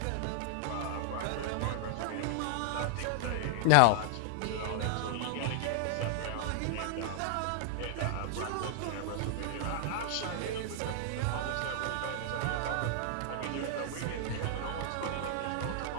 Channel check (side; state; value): both; different; correlation -0.01